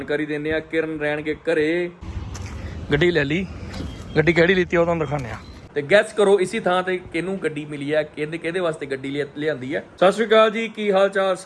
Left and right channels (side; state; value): both; identical; correlation 1.00